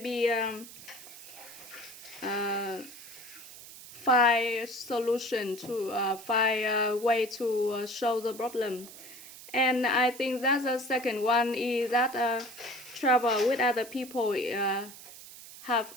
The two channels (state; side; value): noise; right; hiss, 16 dB below the sound